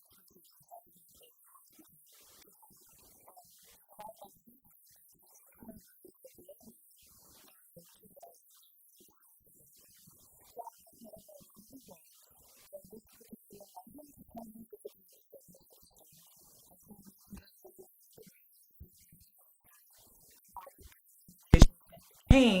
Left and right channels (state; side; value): identical; both; correlation 1.00